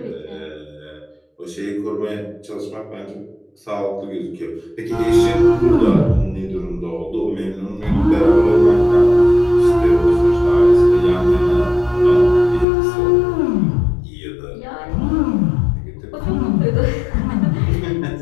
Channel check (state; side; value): drops out; right; at 12.7 s